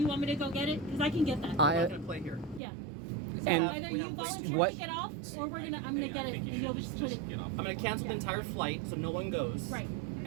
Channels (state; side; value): drops out; left; at 2.6 s